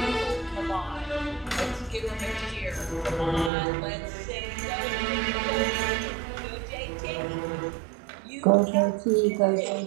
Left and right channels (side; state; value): left; drops out; at 3.5 s